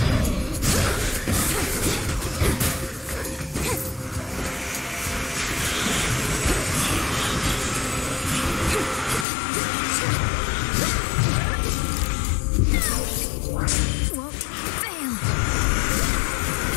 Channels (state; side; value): drops out; right; at 9.2 s